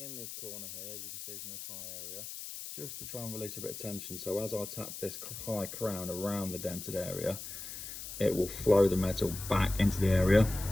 in this corner here, as you can see from this high area, just to try and release a bit of tension. So as I tap this high crown around the dented area, it will flow the metal back into the area.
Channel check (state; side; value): noise; left; hiss, 9 dB below the sound